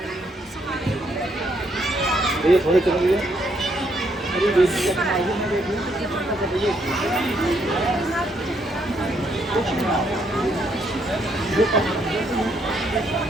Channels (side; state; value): both; normal; correlation 0.73